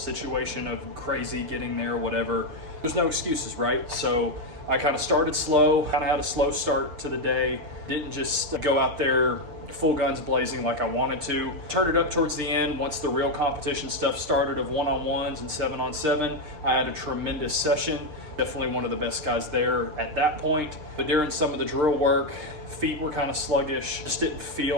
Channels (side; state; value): left; late; 6.6 ms